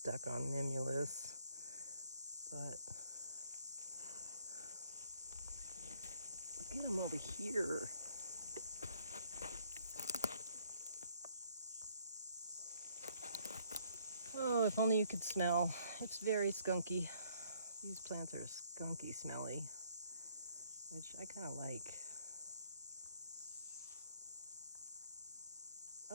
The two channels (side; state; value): both; inverted; correlation -0.66